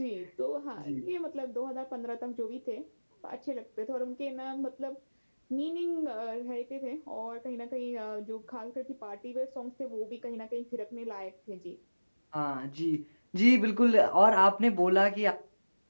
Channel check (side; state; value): both; inverted; correlation -1.00